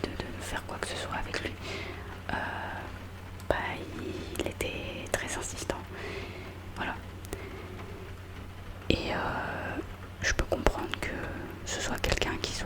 faire quoi que ce soit avec lui, bah il était très insistant. Voilà. Et je peux comprendre que ce soit quelqu'un qui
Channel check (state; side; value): identical; both; correlation 1.00